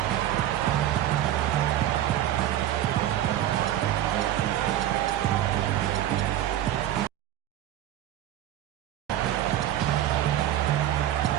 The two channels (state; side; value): quieter; left; 12.4 dB